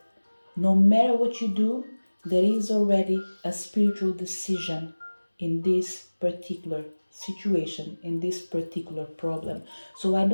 no matter what you do, there is already a spiritual decision in this particular situation, in this particular problem. So I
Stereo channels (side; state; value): both; inverted; correlation -1.00